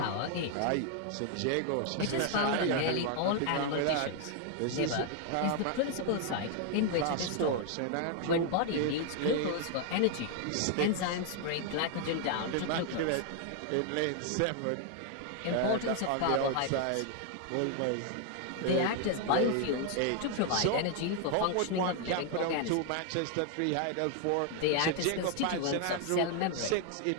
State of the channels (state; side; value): different; both; correlation 0.00